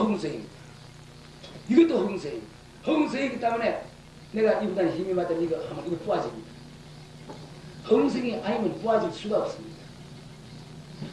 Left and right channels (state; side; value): identical; both; correlation 1.00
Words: 이것도 허공성입니다. 허공성이기 때문에 내가 이보다 힘이 맞다면 이거 하면 이거 부어집니다. 허공성이 아니면 부어질 수가 없습니다.